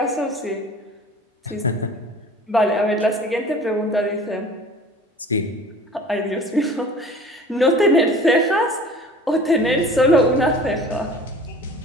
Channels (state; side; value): normal; both; correlation 0.45